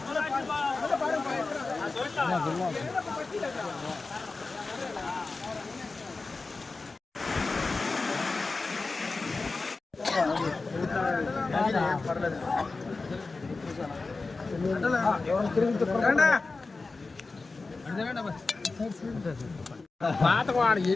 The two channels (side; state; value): right; quieter; 3.8 dB